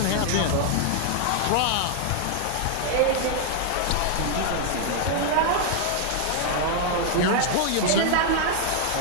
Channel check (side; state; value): both; different; correlation 0.00